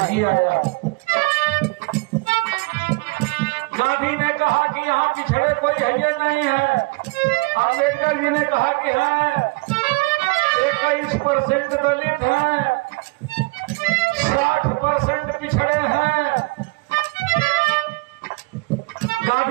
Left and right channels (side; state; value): left; quieter; 27.4 dB